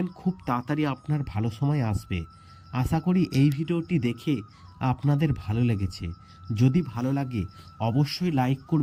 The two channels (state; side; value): identical; both; correlation 1.00